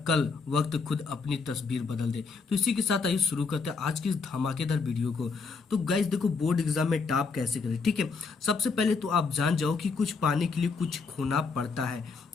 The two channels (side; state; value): right; quieter; 4.7 dB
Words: कल वक्त खुद अपनी तस्वीर बदल दे। तो इसी के साथ आइए शुरू करते हैं आज की इस धमाकेदार वीडियो को। तो गाइस देखो, बोर्ड एग्जाम में टॉप कैसे करें। ठीक है, सबसे पहले तो आप जान जाओ कि कुछ पाने के लिए कुछ खोना पड़ता है।